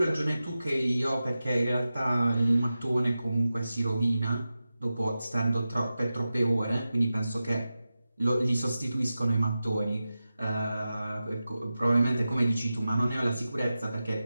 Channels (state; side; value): inverted; both; correlation -0.94